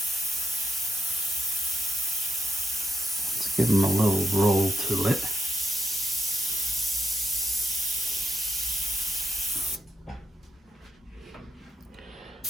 Let's give them a little roll to it.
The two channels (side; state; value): both; normal; correlation 0.84